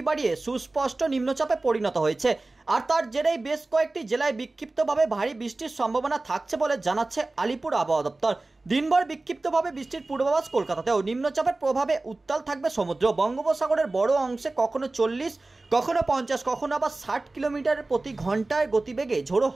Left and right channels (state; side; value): quieter; left; 3.1 dB